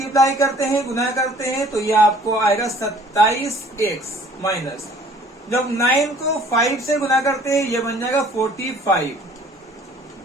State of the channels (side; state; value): both; normal; correlation 0.54